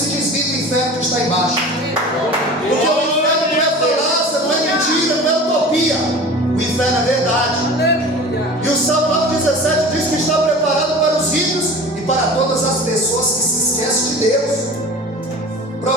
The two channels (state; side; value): normal; both; correlation 0.38